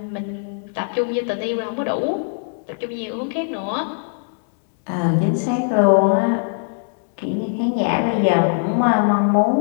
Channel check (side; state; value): right; silent; digital silence